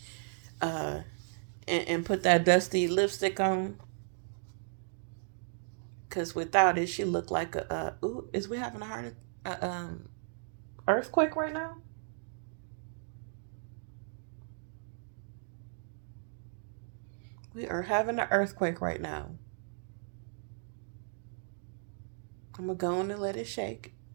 and put that dusty lipstick on. Because without it, she look like ooh, is we having a earthquake right now? We are having an earthquake right now. I'm going to go on and let it shake.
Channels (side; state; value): left; silent; digital silence